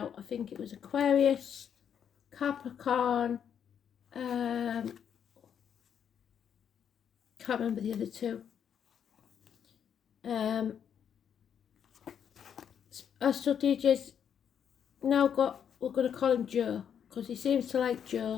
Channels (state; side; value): quieter; right; 8.3 dB